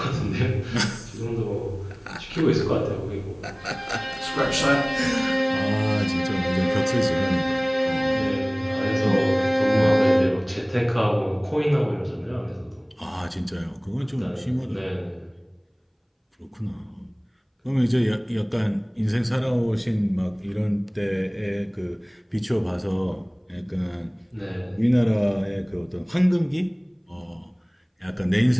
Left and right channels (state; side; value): identical; both; correlation 1.00